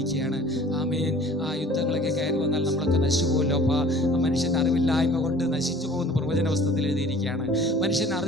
ആമേൻ. ആ യുദ്ധങ്ങളൊക്കെ കയറി വന്നാൽ നമ്മളൊക്കെ നശിച്ചു പോകുമല്ലോ അപ്പാ. മനുഷ്യൻ്റെ അറിവില്ലായ്മ കൊണ്ട് നശിച്ചു പോകുന്ന പ്രവചന പുസ്തകത്തിൽ എഴുതിയിരിക്കുകയാണ്. മനുഷ്യൻ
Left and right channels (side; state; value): both; normal; correlation 0.49